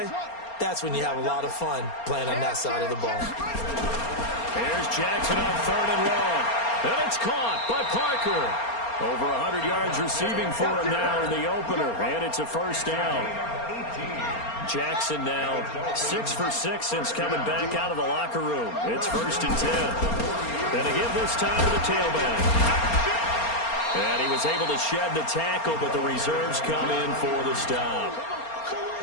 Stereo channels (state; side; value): late; right; 4.3 ms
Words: that's when you have a lot of fun playing on that side of the ball. Here's Jackson on third and long. And it's caught by Parker. Over 100 yards receiving for him now in the opener, and it's a first down. Jackson now 6 for 6 since coming back out of the locker room. It's first and 10. And to give this time to the tailback. And he was able to shed the tackle, but the reserves come in for the stop.